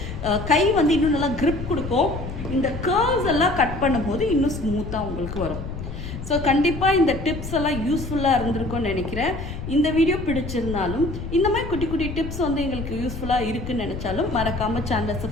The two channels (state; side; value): noise; left; rumble, 8 dB below the sound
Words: கை வந்து இன்னும் நல்லா grip கொடுக்கும். இந்த கர்வ்ஸ் எல்லாம் கட் பண்ணும்போது இன்னும் ஸ்மூத்தாக உங்களுக்கு வரும். ஸோ கண்டிப்பாக இந்த டிப்ஸ் எல்லாம் யூஸ்ஃபுல்லாக இருந்திருக்கும்னு நினைக்கிறேன். இந்த வீடியோ பிடிச்சிருந்தாலும் இந்த மாதிரி குட்டி குட்டி டிப்ஸ் வந்து எங்களுக்கு யூஸ்ஃபுல்லாக இருக்குன்னு நினச்சாலும் மறக்காமல் சேனலை